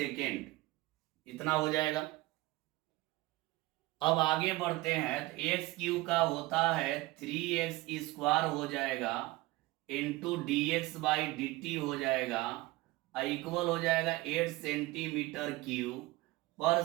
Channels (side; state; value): left; quieter; 19.8 dB